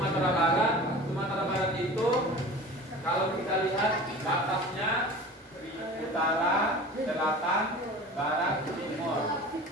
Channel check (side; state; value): both; normal; correlation 0.38